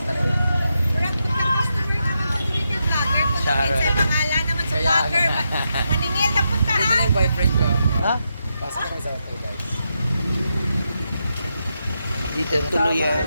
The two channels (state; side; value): inverted; both; correlation -0.84